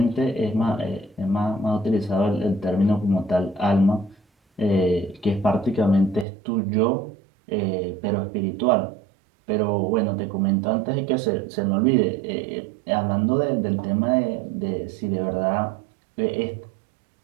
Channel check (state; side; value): drops out; left; at 6.2 s